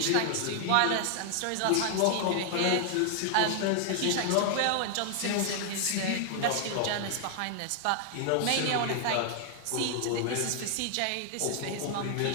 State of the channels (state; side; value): different; both; correlation 0.00